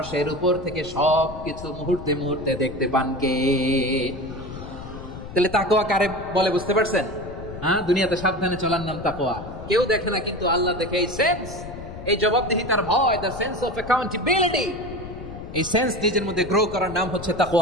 উপর থেকে সব কিছু মুহূর্তে মুহূর্তে দেখতে পান কে? তাহলে তাকওয়া কারে বলে বুঝতে পারছেন? দুনিয়াতে সাবধানে চলার নাম তাকওয়া। কেউ দেখে না, কিন্তু আল্লাহ দেখে। এই সেন্স, এই জবাবদিহিতার ভয়, দ্য সেন্স অফ অ্যাকাউন্টেবিলিটি, এই সেন্স নিজের মধ্যে গ্রো করার নাম হচ্ছে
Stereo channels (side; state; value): left; noise; rumble, 12 dB below the sound